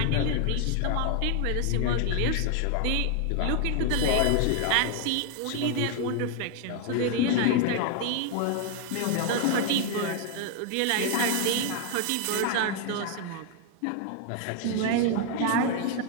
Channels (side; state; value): both; different; correlation 0.00